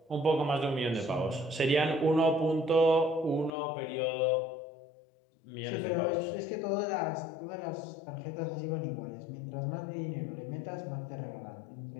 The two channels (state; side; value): drops out; right; at 3.5 s